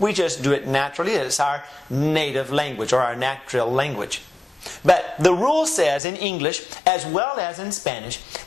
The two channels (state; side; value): drops out; right; at 6.0 s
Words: just do it naturally. It's our native language or our natural language. But the rule says in English as well as in Spanish